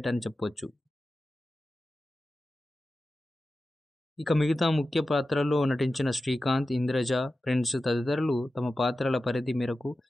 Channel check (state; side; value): normal; both; correlation 0.93